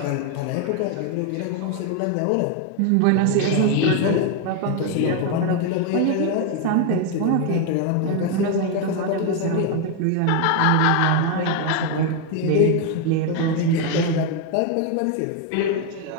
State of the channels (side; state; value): both; different; correlation 0.01